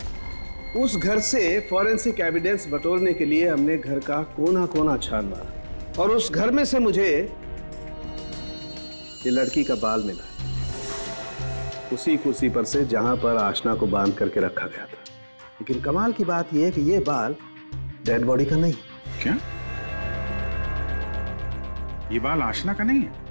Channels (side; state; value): both; inverted; correlation -1.00